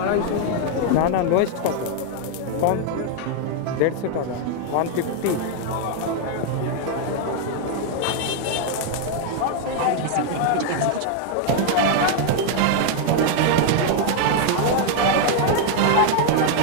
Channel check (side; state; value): both; different; correlation 0.00